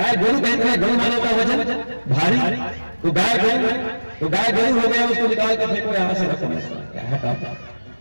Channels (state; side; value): inverted; both; correlation -1.00